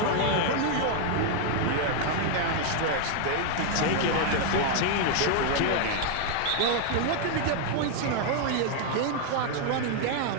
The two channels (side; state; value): both; different; correlation 0.00